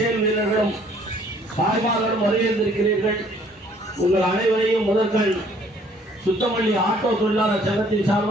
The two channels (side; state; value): both; normal; correlation 0.60